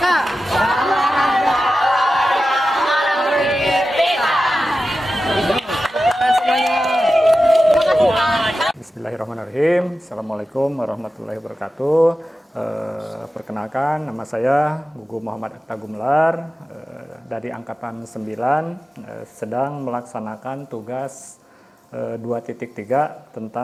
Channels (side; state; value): both; normal; correlation 0.93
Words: Bismillahirrahmanirrahim. Assalamualaikum warahmatullahi wabarakatuh. Perkenalkan, nama saya Gugu Muhammad Atta Gumelar, dari Angkatan 9, sedang melaksanakan tugas 2.3